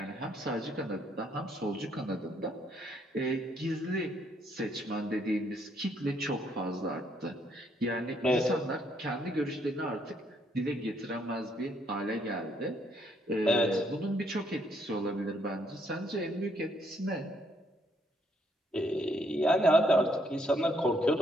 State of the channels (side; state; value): both; normal; correlation 0.71